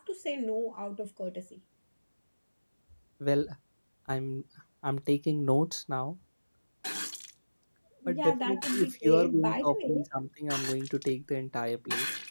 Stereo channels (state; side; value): inverted; both; correlation -1.00